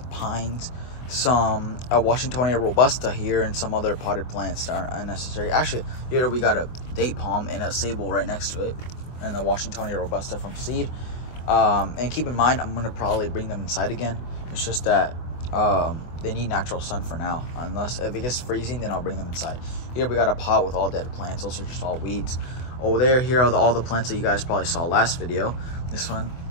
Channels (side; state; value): right; late; 24 ms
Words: pines, some Washingtonia robusta here, and some other potted plants that aren't unnecessary. Actually, here we got a date palm and a sable right next to it, and the Washingtonia robusta from seed. And keep in mind, I'm going to probably bring them inside again. It's just that they need natural sun for now. Unless if it gets freezing, then I'll bring them inside. Here we got a pot with all dead plants. Those are just all weeds. Over there, here are all the plants that you guys probably saw last video. This one,